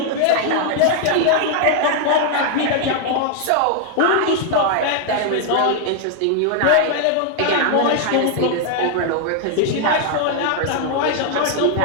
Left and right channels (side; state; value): both; different; correlation 0.00